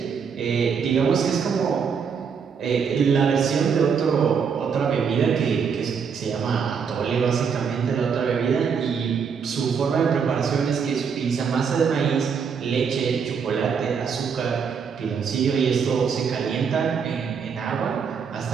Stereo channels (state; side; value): quieter; left; 6.4 dB